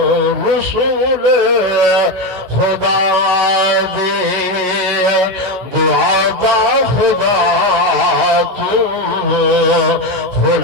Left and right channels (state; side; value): late; left; 16 ms